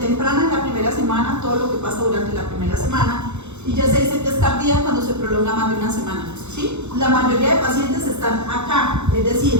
es la primera semana, todo lo que pasa durante la primera semana. Y ya se dice que es tardía cuando se prolonga más de una semana, ¿sí? La mayoría de pacientes están acá, es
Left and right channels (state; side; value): late; left; 0.82 ms